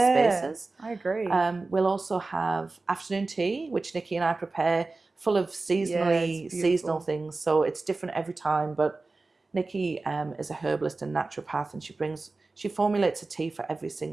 I agree. We'll also have afternoon tea, which Nikki and I prepare, full of seasonal things. So it's different every time. But Nikki is a herbalist and naturopath, and she formulates a tea for every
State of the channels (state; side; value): quieter; left; 3.5 dB